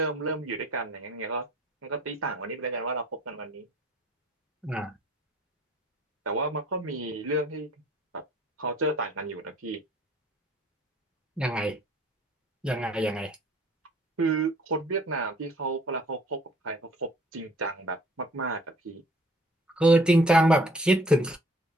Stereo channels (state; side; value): normal; both; correlation 0.55